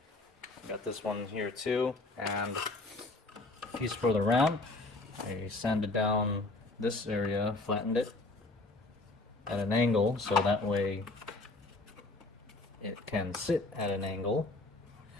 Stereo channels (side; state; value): right; quieter; 3.1 dB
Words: Got this one here too, and piece for the ramp. I sanded down this area, flattened it at an angle, so that way it can sit at an angle,